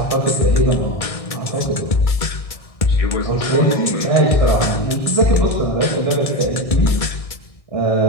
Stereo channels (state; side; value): late; right; 1.6 ms